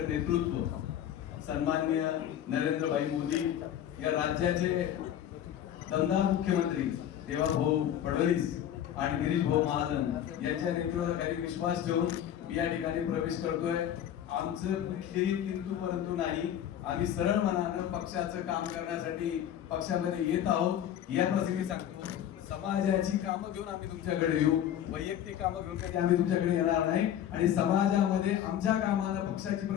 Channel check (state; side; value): quieter; right; 10.6 dB